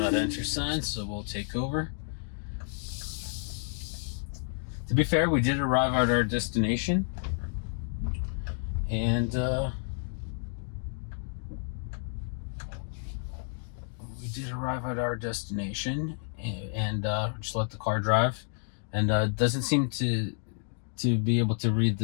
enter sign, so we'll take over. To be fair, we did arrive at our destination, and just let the car drive, and doesn't seem to be able to read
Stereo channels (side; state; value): right; silent; digital silence